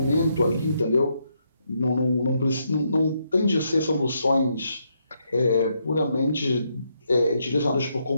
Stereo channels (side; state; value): both; inverted; correlation -0.78